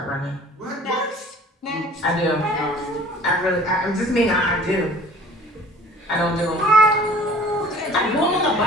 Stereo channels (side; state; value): both; normal; correlation 0.48